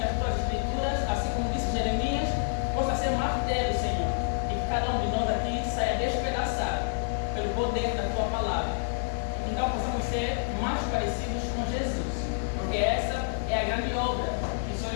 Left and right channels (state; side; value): silent; right; digital silence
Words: as Tuas Escrituras, assim como disse Jeremias, possa ser martelo, Senhor, e que cada um de nós aqui saia despedaçado pelo poder da Tua palavra. Então possamos ser mais parecidos com Jesus, porque essa é a grande obra que o Senhor